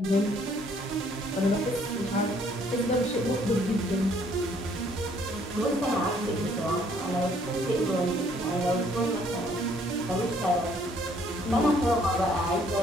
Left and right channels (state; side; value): normal; both; correlation 0.63